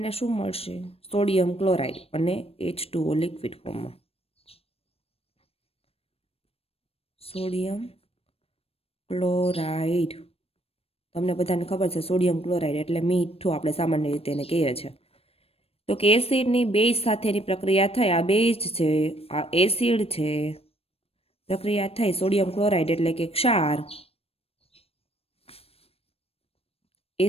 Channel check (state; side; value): late; right; 0.28 ms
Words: શું મળશે? સોડિયમ ક્લોરાઇડ અને H2O લિક્વિડ ફોર્મમાં. સોડિયમ ક્લોરાઇડ, તમને બધાને ખબર છે સોડિયમ ક્લોરાઇડ એટલે મીઠું આપણે સામાન્ય રીતે એને કહીએ છીએ. તો કે એસિડની બેઝ સાથેની પ્રક્રિયા થઈ, આ બેઝ છે, આ એસિડ છે, પ્રક્રિયા થઈ સોડિયમ ક્લોરાઇડ એટલે કે ક્ષાર,